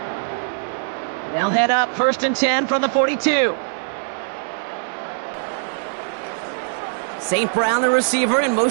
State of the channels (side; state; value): left; silent; 64 dB below the other